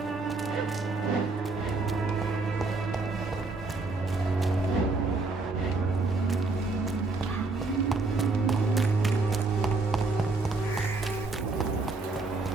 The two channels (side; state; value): left; quieter; 3.6 dB